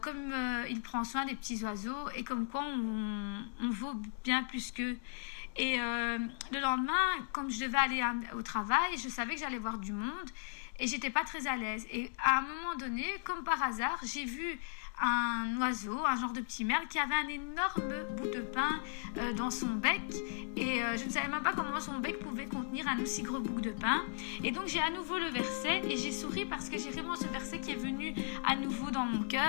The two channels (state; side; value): silent; right; digital silence